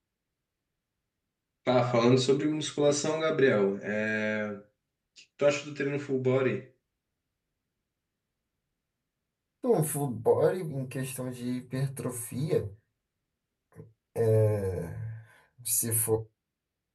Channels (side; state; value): both; identical; correlation 1.00